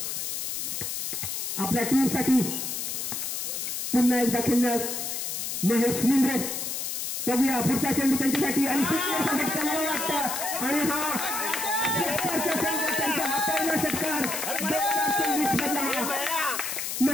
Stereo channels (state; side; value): noise; left; hiss, 3 dB below the sound